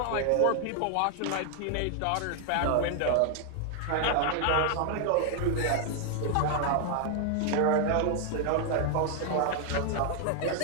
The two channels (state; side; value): different; both; correlation 0.00